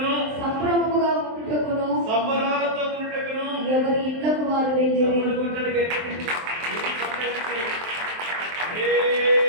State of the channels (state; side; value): late; left; 23 ms